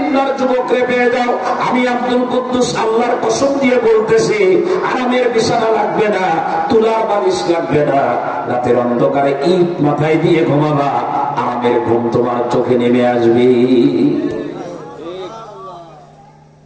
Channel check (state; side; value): identical; both; correlation 1.00